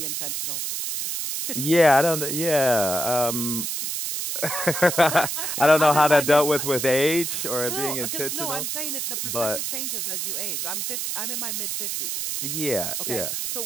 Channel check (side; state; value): right; noise; hiss, 2 dB below the sound